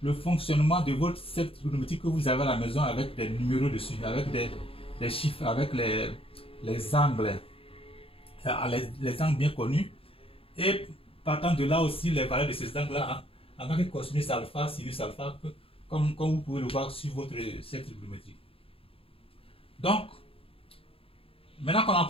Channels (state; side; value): late; right; 0.27 ms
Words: le fonctionnement de votre cercle trigonométrique que vous avez à la maison avec des numéros dessus, avec des chiffres, avec les angles, les angles bien connus. Et partant de là aussi, les valeurs de ces angles-là, en tant que cosinus alpha, sinus alpha, comme vous pouvez le voir sur votre cercle trigonométrique. Donc, maintenant qu'on a